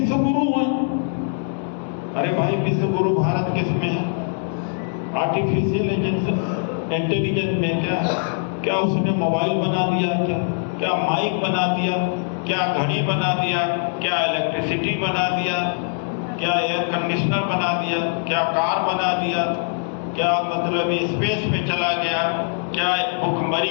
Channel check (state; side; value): silent; right; 64 dB below the other